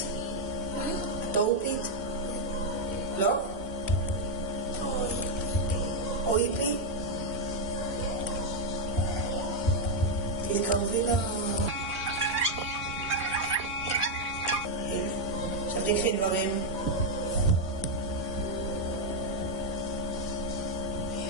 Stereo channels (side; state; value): both; normal; correlation 0.00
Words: מה? את אורפית? לא? אויפי? תתקרבי ל... עכשיו תקחי דברים.